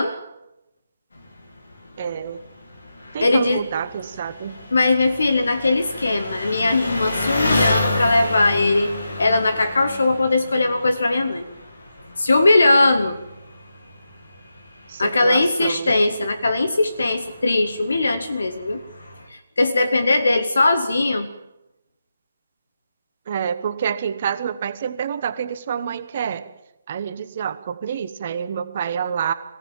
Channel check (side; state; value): both; inverted; correlation -0.87